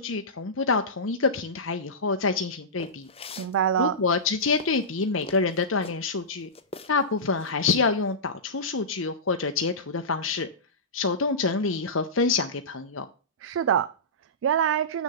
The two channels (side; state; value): both; normal; correlation -0.17